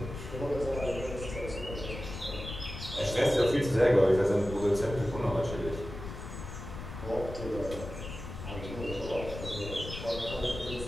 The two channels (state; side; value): noise; left; rumble, 9 dB below the sound